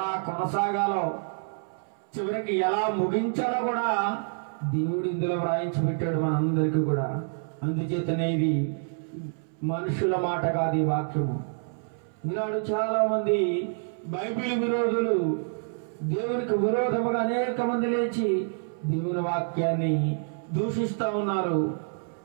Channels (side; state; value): left; silent; 60 dB below the other